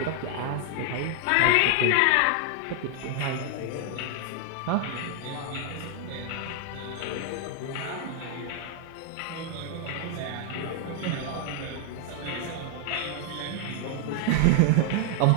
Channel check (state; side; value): different; both; correlation 0.00